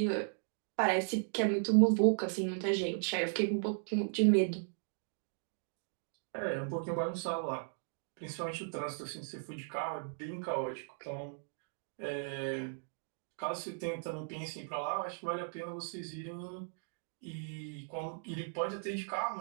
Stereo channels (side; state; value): left; silent; digital silence